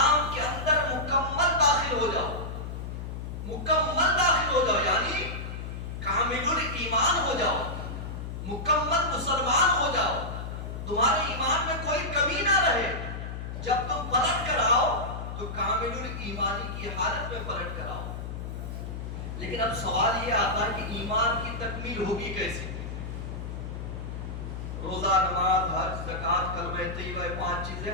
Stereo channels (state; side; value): noise; left; hum, 6 dB below the sound